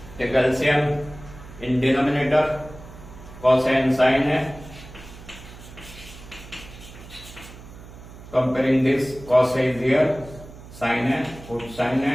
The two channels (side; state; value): right; noise; hum, 17 dB below the sound